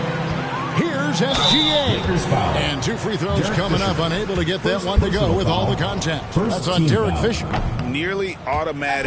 Here's SGA. And 2 free throws coming up. Unable to get that one to go with all the contact. That's on Derek Fisher. Nearly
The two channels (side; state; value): both; identical; correlation 1.00